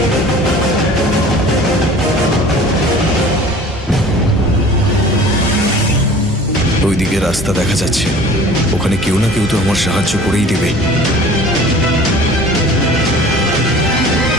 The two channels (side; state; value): both; normal; correlation 0.45